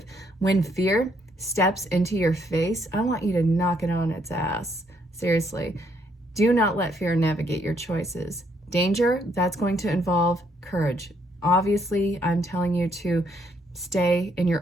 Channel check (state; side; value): normal; both; correlation 0.71